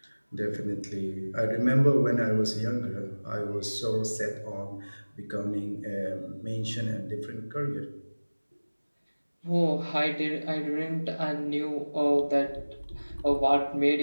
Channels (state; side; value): inverted; both; correlation -1.00